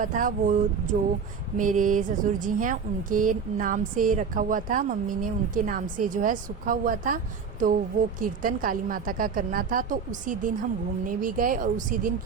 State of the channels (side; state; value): left; quieter; 6.0 dB